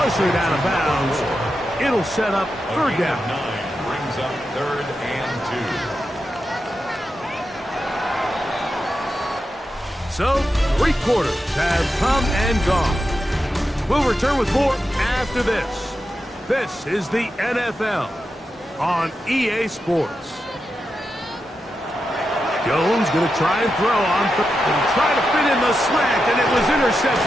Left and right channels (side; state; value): both; normal; correlation 0.88